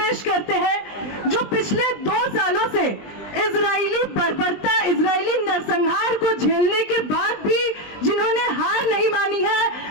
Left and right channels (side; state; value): right; late; 20 ms